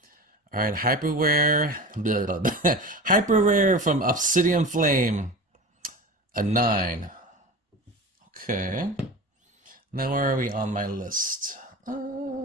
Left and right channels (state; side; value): normal; both; correlation 0.31